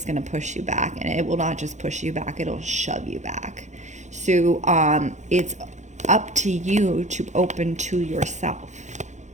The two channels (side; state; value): left; late; 0.34 ms